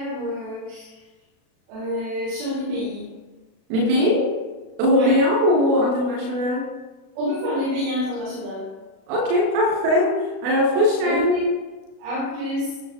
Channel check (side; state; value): left; late; 36 ms